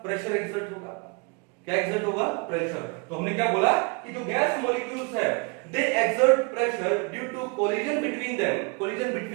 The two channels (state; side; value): quieter; left; 31.6 dB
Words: प्रेशर एक्सर्ट होगा। क्या एक्सर्ट होगा, प्रेशर। तो हमने क्या बोला कि जो गैस मॉलिक्यूल्स है they exert pressure due to collision between them, collision